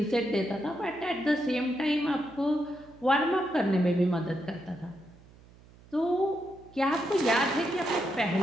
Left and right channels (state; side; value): noise; right; hum, 24 dB below the sound